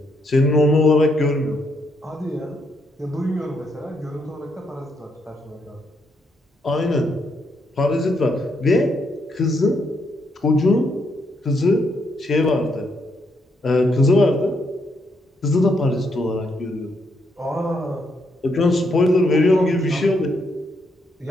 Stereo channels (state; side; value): normal; both; correlation 0.77